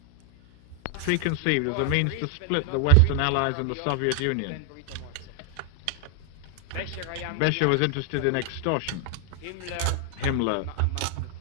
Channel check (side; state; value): both; different; correlation 0.00